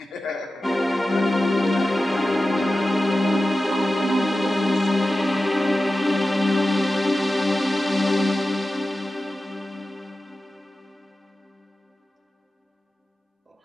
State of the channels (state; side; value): normal; both; correlation 0.94